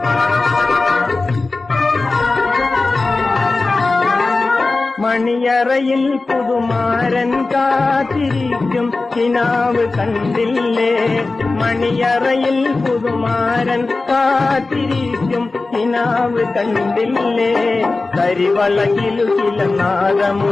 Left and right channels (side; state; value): right; quieter; 3.5 dB